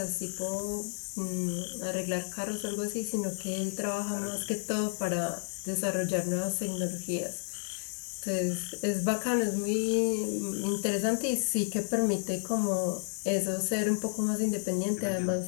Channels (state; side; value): silent; right; digital silence